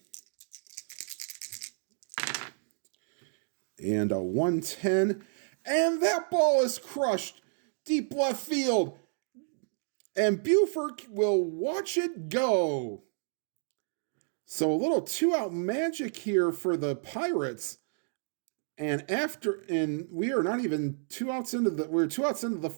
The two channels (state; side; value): silent; left; digital silence